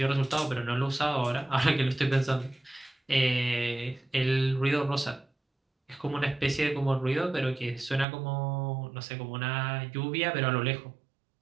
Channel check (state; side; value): drops out; left; at 8.1 s